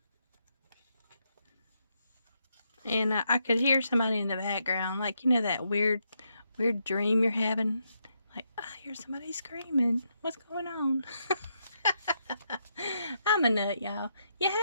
And I could hear somebody in the background, like, that weird dream you're having. Like, I hear somebody screaming. What's going on? I'm a nut, y'all. You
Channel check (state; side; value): inverted; both; correlation -0.80